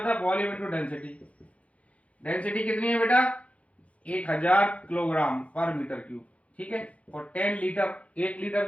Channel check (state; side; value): late; right; 0.064 ms